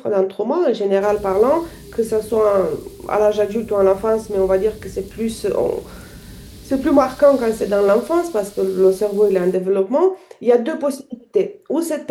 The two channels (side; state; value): both; identical; correlation 1.00